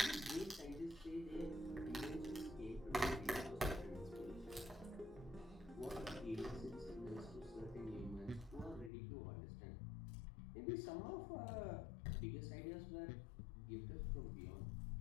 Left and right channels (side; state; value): right; drops out; at 8.9 s